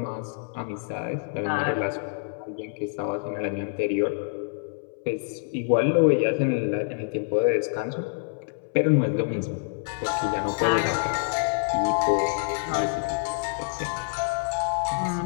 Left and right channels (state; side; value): silent; right; 61 dB below the other